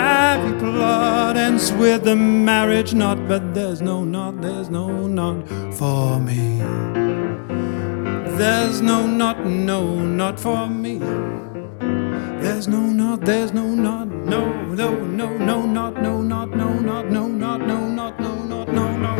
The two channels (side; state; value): right; silent; digital silence